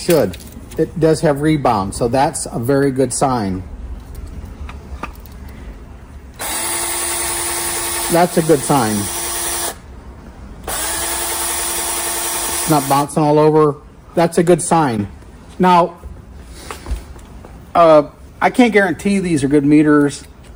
It does have rebound, so that's a very good sign. That's a good sign. It's not bouncing all over. That's a good sign. Now, I can't guarantee these are good meters.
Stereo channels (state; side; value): identical; both; correlation 1.00